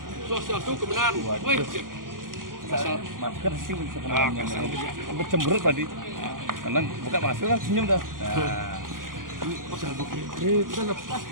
Sosial itu kebenaran. Woi, masker sih sebenarnya. Sampai cemberut tadi. Karena buka masker kan senyum dah. Kita lepas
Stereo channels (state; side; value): late; left; 0.90 ms